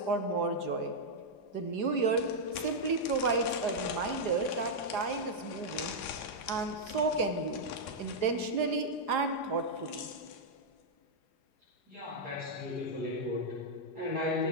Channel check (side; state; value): right; late; 4.9 ms